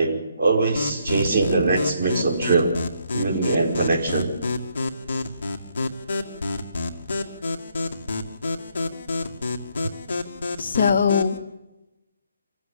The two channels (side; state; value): both; inverted; correlation -0.71